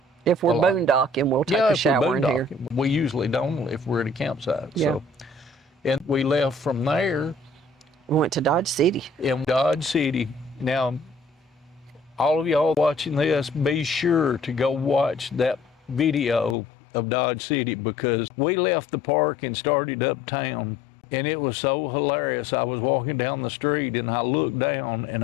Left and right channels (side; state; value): right; drops out; at 16.6 s